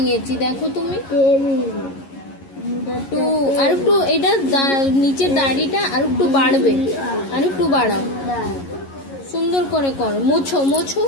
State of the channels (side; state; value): right; late; 11 ms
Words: দেখো তুমি। টু আর একটু এটা নিচের দাড়িটা আর একটু বাড়বে, আর একটু বাড়াও, সুন্দর করে করো। মোছো মোছো,